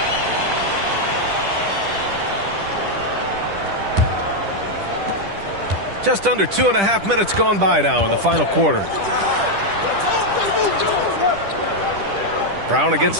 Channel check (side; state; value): left; late; 10 ms